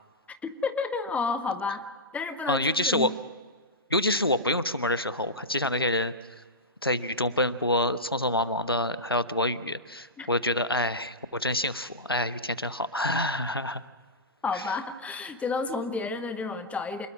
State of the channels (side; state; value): both; normal; correlation -0.11